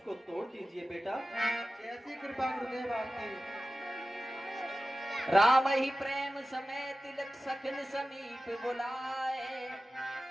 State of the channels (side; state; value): both; normal; correlation 0.95